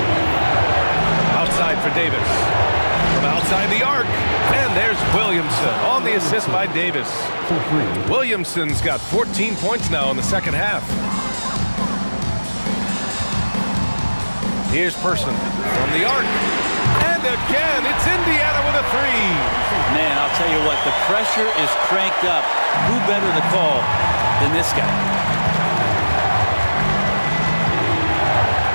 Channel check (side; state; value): both; inverted; correlation -1.00